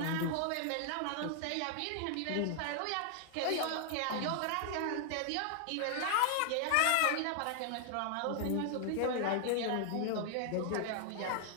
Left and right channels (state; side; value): different; both; correlation 0.00